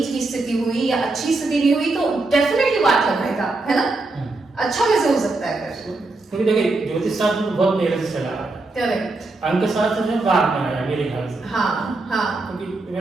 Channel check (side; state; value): left; quieter; 3.2 dB